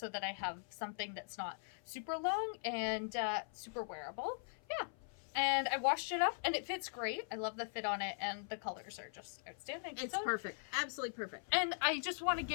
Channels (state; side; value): silent; right; 51 dB below the other